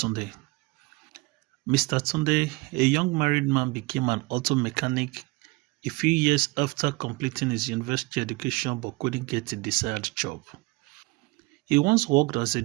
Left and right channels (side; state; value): left; quieter; 24.2 dB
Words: Mr. Tunde, a young married man, became an auto mechanic a few years after completing his university education but couldn't get a desired job. He once worked as a